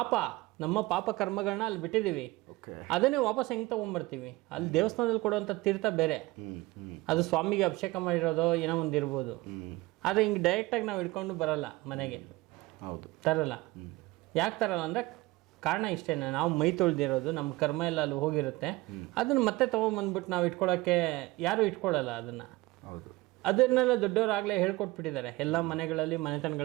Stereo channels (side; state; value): left; quieter; 20.7 dB